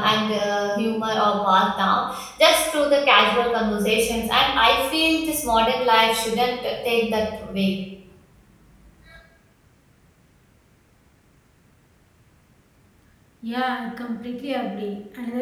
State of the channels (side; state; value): both; identical; correlation 1.00